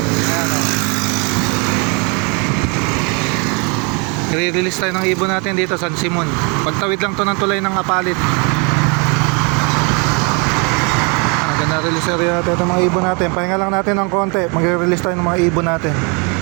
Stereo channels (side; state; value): left; quieter; 32.7 dB